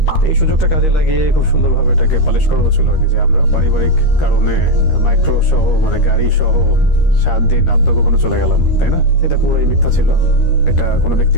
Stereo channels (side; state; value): right; late; 13 ms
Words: তো এই সুযোগটা কাজে লাগিয়ে খুব সুন্দরভাবে এটাকে পালিশ করা হচ্ছিল আর কি, যে আমরা পারিবারিক কারণে মাইক্রো সহ মানে গাড়ি সহ 7 দিন আত্মগোপনে চলে গেলাম, তাই না? এটা পুরোই মিথ্যা ছিল, এটা কোনো